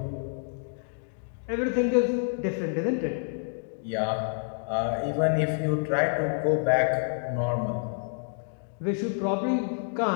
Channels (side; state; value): right; silent; digital silence